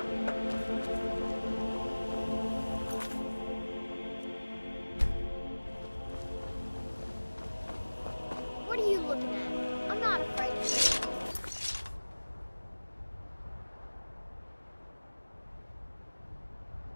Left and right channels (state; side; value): inverted; both; correlation -1.00